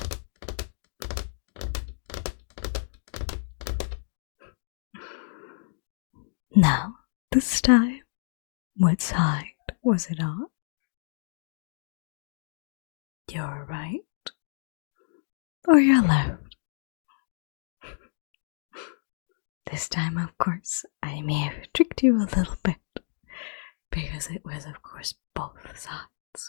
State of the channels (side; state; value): right; silent; digital silence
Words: Now, this time, what side was it on? Your right or your left? This time, of course, I may have tricked you a little bit, because it was, of course, both